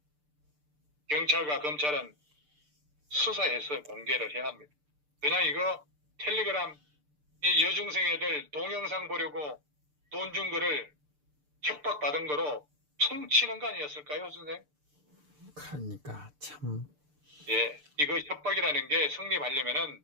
경찰과 검찰은 수사해서 공개를 해야 합니다. 그냥 이거 텔레그램 이 여중생 애들 동영상 보려고 돈 준 거를 협박받은 거로 퉁치는 거 아니었을까요, 선생님? 그러니까 참. 예, 이거 협박이라는 게 성립하려면은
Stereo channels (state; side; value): late; left; 6.7 ms